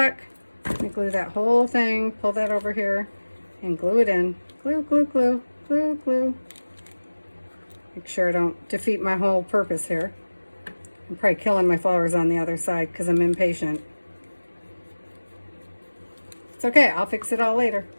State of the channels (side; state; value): both; inverted; correlation -1.00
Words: Let me glue that whole thing, pull that over here, and glue it in. Glue, glue, glue, glue, glue. Make sure I don't defeat my whole purpose here. I'm probably killing my flowers on the other side because I'm impatient. It's okay, I'll fix it all later.